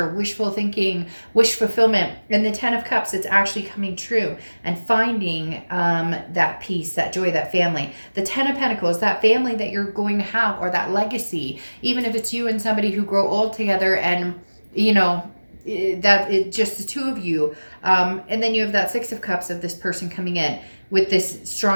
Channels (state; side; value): inverted; both; correlation -1.00